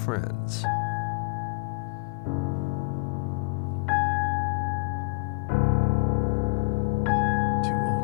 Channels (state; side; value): quieter; right; 28.0 dB